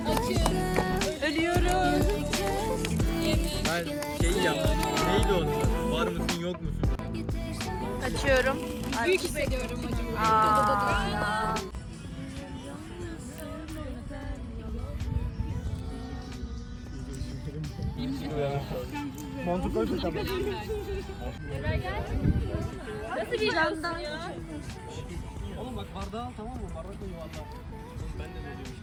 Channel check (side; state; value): both; identical; correlation 1.00